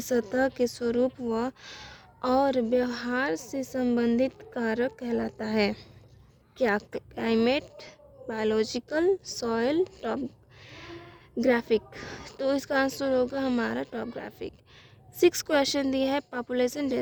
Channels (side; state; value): both; identical; correlation 1.00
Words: सतह के स्वरूप व और व्यवहार से संबंधित कारक कहलाता है क्या? Climate, biological, soil, topographic. तो इसका आंसर होगा हमारा टॉपोग्राफिक। सिक्स क्वेश्चन दिया है पॉपुलेशन